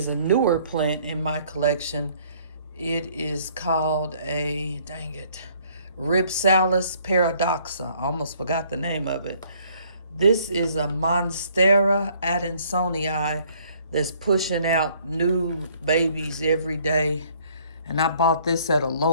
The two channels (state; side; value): inverted; both; correlation -0.61